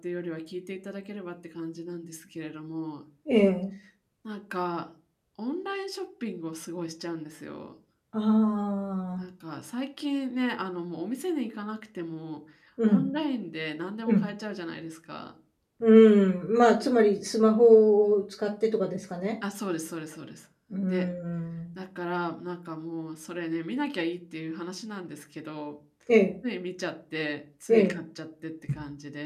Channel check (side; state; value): both; identical; correlation 1.00